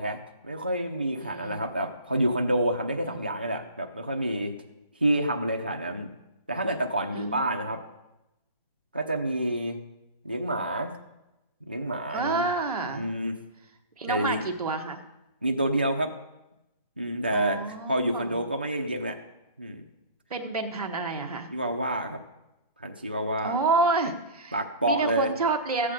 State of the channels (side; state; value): both; inverted; correlation -0.46